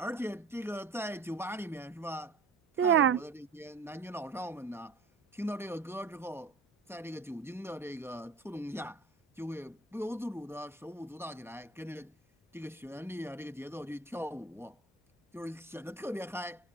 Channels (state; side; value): quieter; left; 4.2 dB